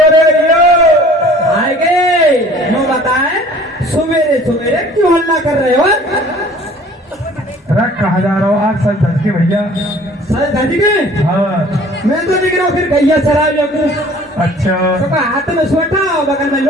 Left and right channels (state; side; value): normal; both; correlation 0.50